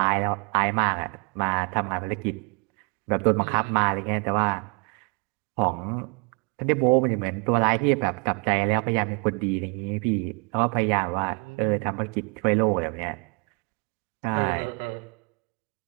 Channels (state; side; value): quieter; left; 32.9 dB